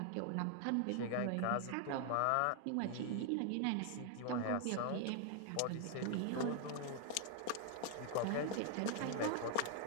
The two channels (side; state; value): both; different; correlation 0.00